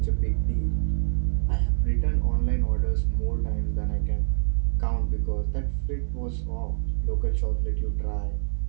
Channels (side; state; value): left; silent; 58 dB below the other